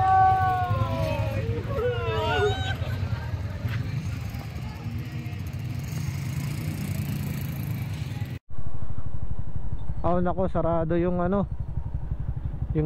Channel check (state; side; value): identical; both; correlation 1.00